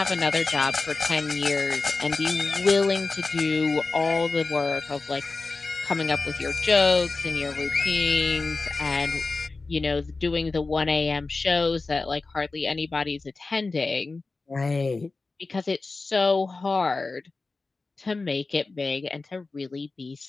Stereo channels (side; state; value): right; quieter; 3.7 dB